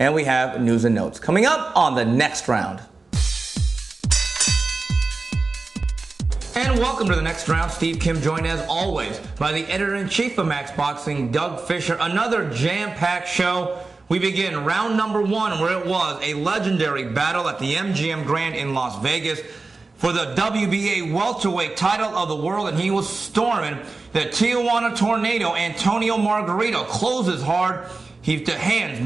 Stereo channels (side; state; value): left; quieter; 3.7 dB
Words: we have news and notes coming up on the next round. And welcome to the next round. Steve Kim joined as always by the editor-in-chief of Max Boxing, Doug Fischer. Another jam-packed show. We begin round number one, where it was a legendary battle at the MGM Grand in Las Vegas for the WBA welterweight title of the world, and he was storming the Tijuana Tornado. Antonio Margarito closes hard. He hands